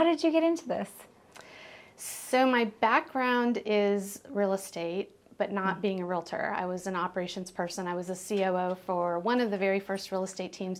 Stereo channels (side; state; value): both; identical; correlation 1.00